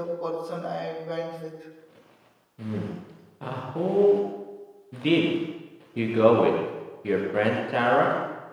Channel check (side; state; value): both; identical; correlation 1.00